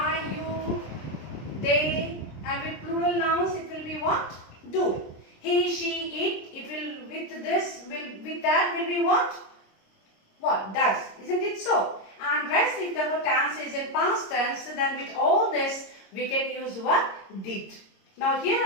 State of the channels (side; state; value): right; late; 26 ms